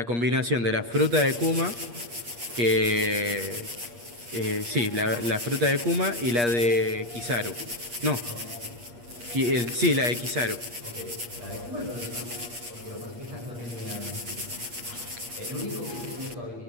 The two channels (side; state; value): left; late; 8.4 ms